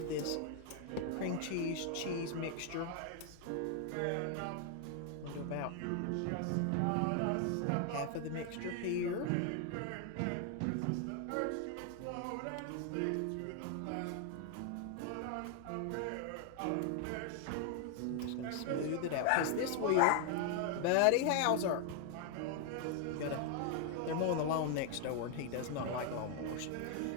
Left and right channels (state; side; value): different; both; correlation 0.00